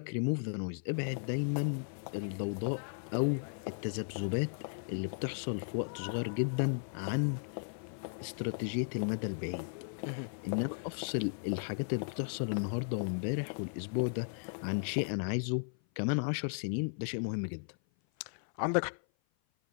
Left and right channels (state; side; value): silent; right; 54 dB below the other